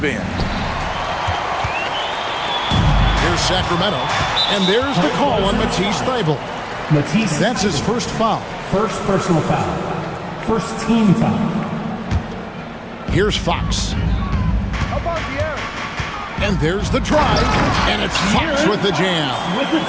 end. Here's Sacramento. And there's the call on Matisse Thybulle. Matisse. That's his first foul. First personal foul. First team foul. Here's Fox. And there's the drive, and it's Fox with the jam.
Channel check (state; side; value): identical; both; correlation 1.00